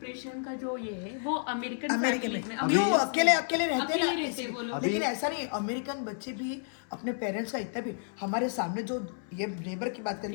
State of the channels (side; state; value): right; silent; 57 dB below the other